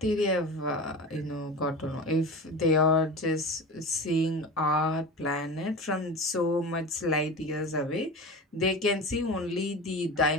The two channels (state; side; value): normal; both; correlation 0.30